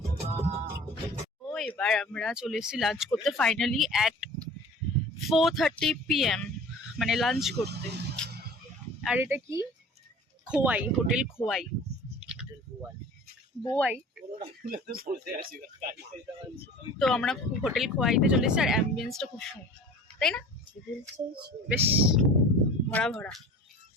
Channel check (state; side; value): normal; both; correlation 0.42